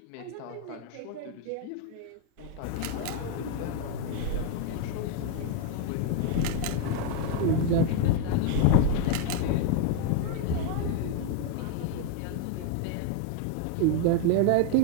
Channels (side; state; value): both; different; correlation 0.01